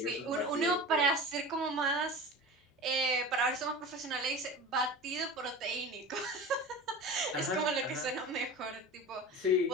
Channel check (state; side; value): normal; both; correlation 0.33